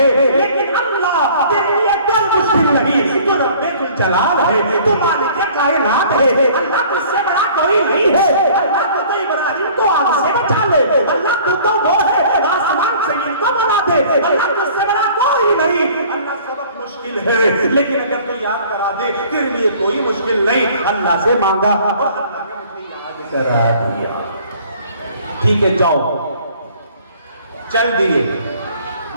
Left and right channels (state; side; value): inverted; both; correlation -0.52